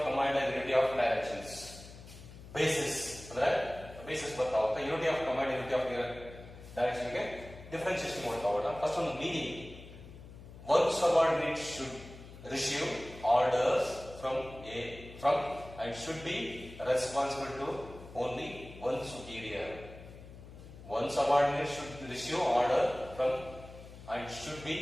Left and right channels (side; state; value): left; noise; hum, 16 dB below the sound